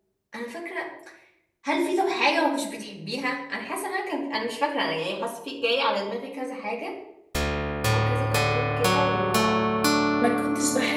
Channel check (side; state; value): both; identical; correlation 1.00